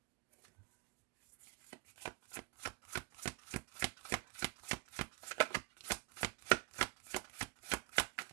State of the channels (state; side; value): quieter; left; 22.1 dB